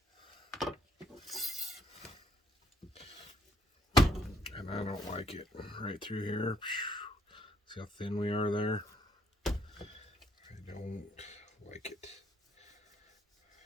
And I don't like it. Right through here. See how thin we are there? I don't like it.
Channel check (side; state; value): both; normal; correlation 0.66